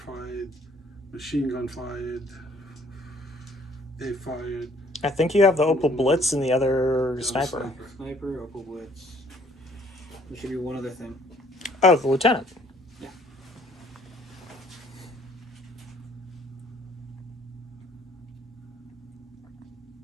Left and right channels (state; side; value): normal; both; correlation 0.60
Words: Machine gun fired. They fired. I think you have the Opel Blitz and the other sniper. Sniper, Opal Blitz. There should be one other thing. Oh, the lieutenant. Yeah.